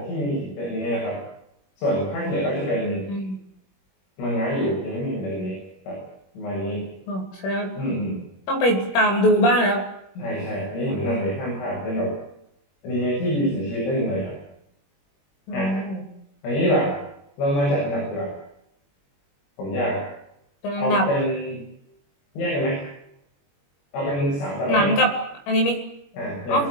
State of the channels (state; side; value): late; right; 21 ms